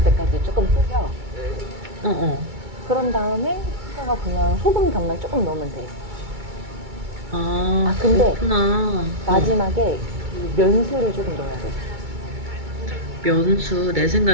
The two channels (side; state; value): left; late; 2.2 ms